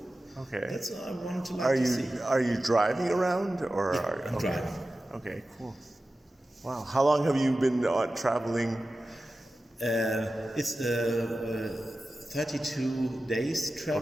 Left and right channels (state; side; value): normal; both; correlation 0.94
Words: Okay. That's what I wanted to see. Are you driving around or? Yeah, I'm driving. Okay, cool. Wow, how long have you been traveling? It's 32 days